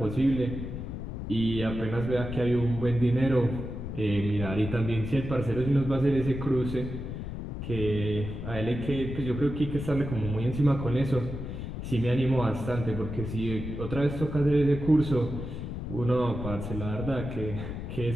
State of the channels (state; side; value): noise; left; rumble, 7 dB below the sound